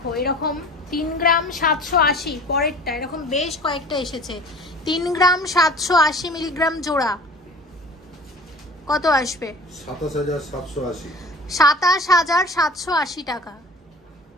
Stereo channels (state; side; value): normal; both; correlation 0.43